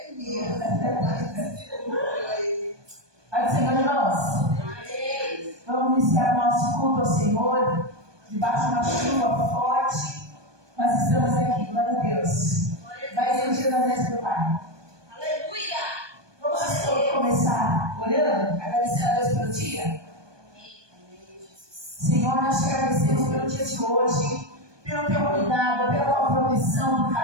mesmo. Pai do Senhor, irmãos. Vamos iniciar nosso culto ao Senhor, debaixo de uma chuva forte. Nós estamos aqui, glória a Deus. Vai ser o dia da mesa do Pai. Aleluia! Vamos começar orando, agradecendo a Deus pelo dia. Senhor, nós te agradecemos pelo dia de hoje, pelo teu cuidado, pela tua proteção, por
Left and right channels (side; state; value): left; late; 1.2 ms